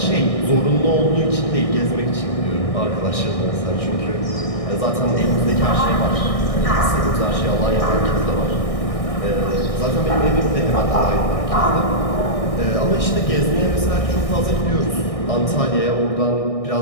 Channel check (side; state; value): right; late; 1.6 ms